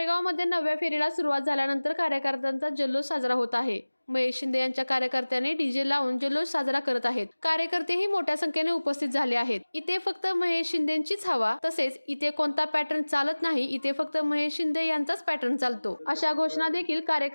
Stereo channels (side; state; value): both; inverted; correlation -1.00